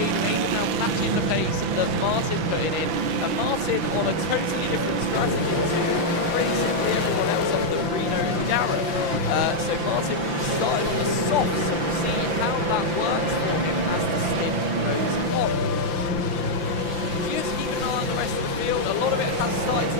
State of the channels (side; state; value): left; late; 5.9 ms